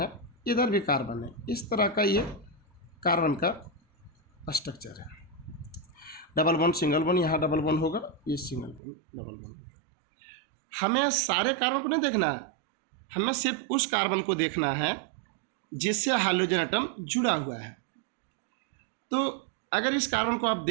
इधर भी कार्बन है, इस तरह का ये कार्बन का स्ट्रक्चर है। डबल बॉन्ड सिंगल बॉन्ड, यहाँ डबल बॉन्ड होगा, ये सिंगल बॉन्ड डबल बॉन्ड होगा। हमें सारे कार्बन को नहीं देखना है, हमें सिर्फ उस कार्बन को देखना है जिससे हाइड्रोजन एटम जुड़ा हुआ है। तो अगर इस कार्बन को आप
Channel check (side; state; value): left; drops out; at 8.8 s